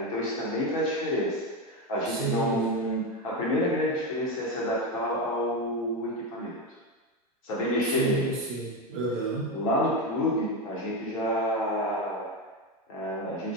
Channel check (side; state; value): both; normal; correlation 0.13